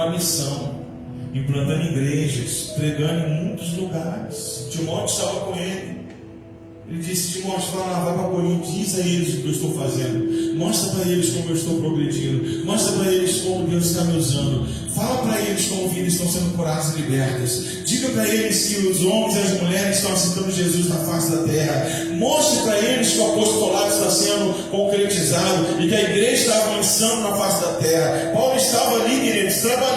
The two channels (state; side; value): identical; both; correlation 1.00